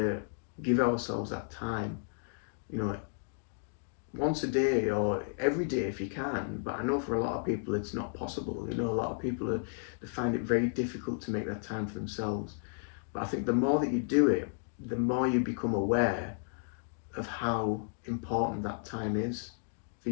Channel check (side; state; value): right; silent; digital silence